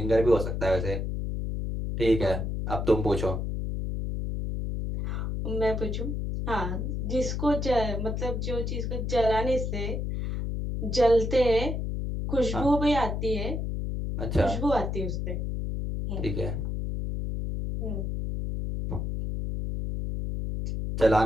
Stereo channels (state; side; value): noise; left; hum, 2 dB below the sound